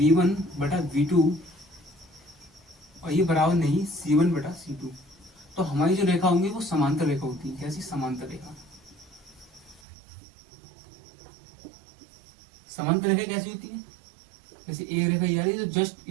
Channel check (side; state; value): left; drops out; at 9.8 s